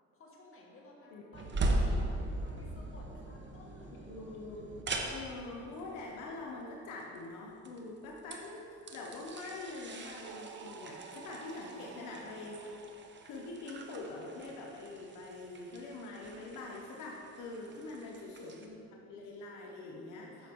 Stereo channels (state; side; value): normal; both; correlation 0.52